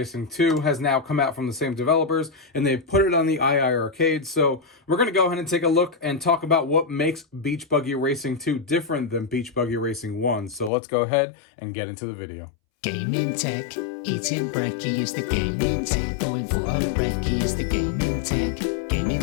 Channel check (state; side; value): drops out; right; at 10.7 s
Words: 2 has now come out from the same developers, and they've put it on the iiRcade. So we're going to go ahead and take a look and talk about what makes Beach Buggy Racing 2 different than Beach Buggy Racing 1. So let's go ahead and get into the video. Gaming tech, eating brekkie is the gaming tech. Going for a brekkie is the gaming tech. Gaming